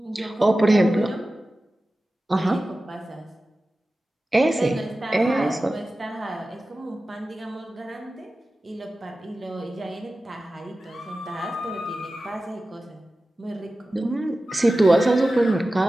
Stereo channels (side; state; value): both; normal; correlation 0.95